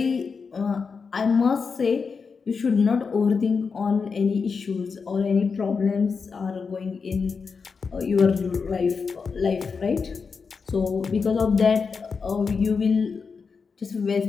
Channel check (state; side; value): quieter; right; 5.3 dB